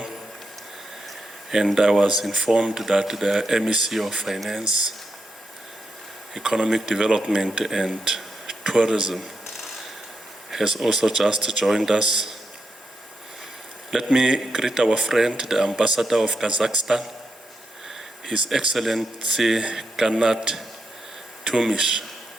and I was informed that the MEC of Finance, Economic Development and Tourism has also just joined us. Let me greet our friend, the Ambassador of Kazakhstan, His Excellency Kanat Tumish.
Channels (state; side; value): normal; both; correlation 0.84